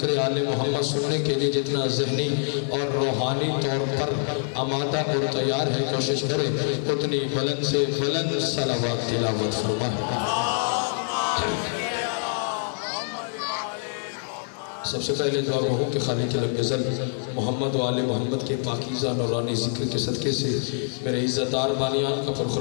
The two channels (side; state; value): right; silent; digital silence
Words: آل محمد سننے کے لیے جتنا ذہنی اور روحانی طور پر آمادہ اور تیار ہے، کوشش کرے اتنی بلند سے بلند صلوات تلاوت فرمائے۔ سب سے پہلے دعا گو ہوں کہ خالق لم یزل محمد و آل محمد کے پاکیزہ نورانی ذکر کے صدقے سے میرے عزتدار بانیان کا